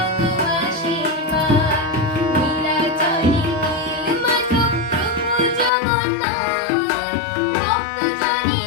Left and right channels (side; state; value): right; drops out; at 5.7 s